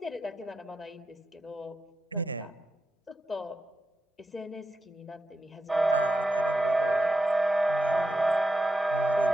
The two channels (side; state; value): both; normal; correlation 0.88